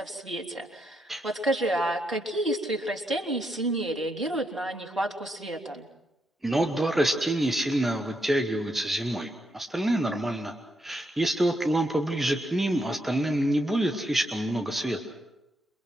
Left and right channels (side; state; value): both; normal; correlation 0.80